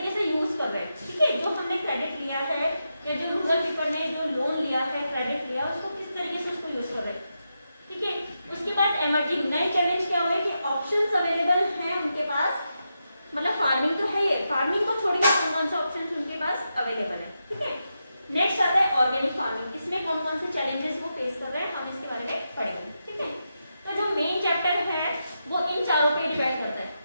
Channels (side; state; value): both; inverted; correlation -0.87